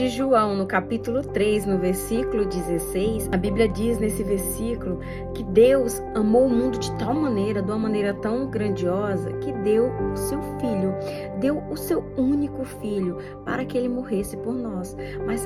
João, no capítulo 3, no versículo 16, a Bíblia diz nesse versículo que Deus amou o mundo de tal maneira, de uma maneira tão grandiosa, que deu o seu filho, deu o seu único filho para que ele morresse por nós. Mas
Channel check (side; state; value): both; identical; correlation 1.00